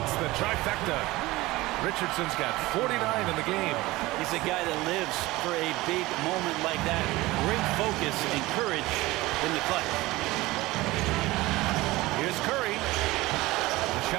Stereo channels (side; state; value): left; quieter; 19.5 dB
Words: the trifecta. Richardson's got 49 in the game. He's a guy that lives for a big moment like that. Great focus and courage in the clutch. Here's Curry. The